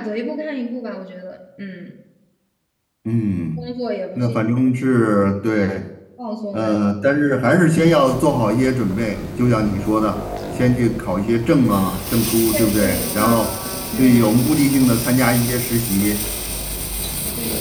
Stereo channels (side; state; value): both; identical; correlation 1.00